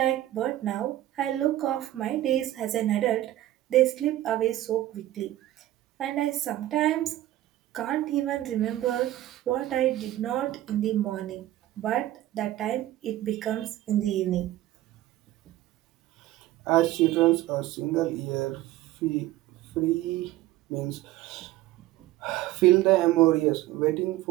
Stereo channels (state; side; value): quieter; left; 14.8 dB